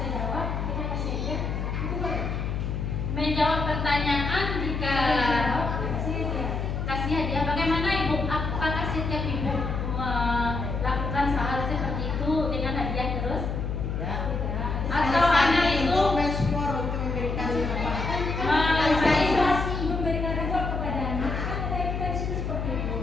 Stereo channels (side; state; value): left; noise; hum, 2 dB below the sound